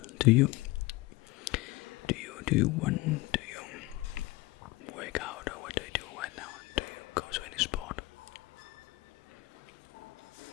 Do you want to work out, or what do you do right now? Do you go to any sport?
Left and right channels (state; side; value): quieter; right; 21.0 dB